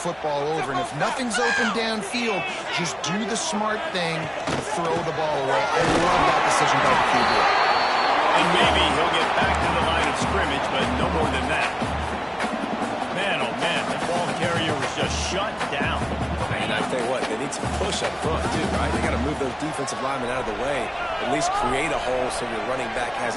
over, and if nothing's open downfield, just do the smart thing and throw the ball away. I love that decision by the QB. And maybe he'll get back to the line of scrimmage, but no more than that. Man, oh man, the ball carrier was just shut down. And I tell you what, they need some push up front too, right? They got to move those defensive linemen out of the way, at least create a hole so your running back has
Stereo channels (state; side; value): identical; both; correlation 1.00